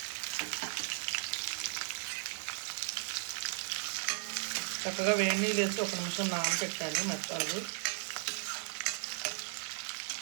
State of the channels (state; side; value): silent; left; 54 dB below the other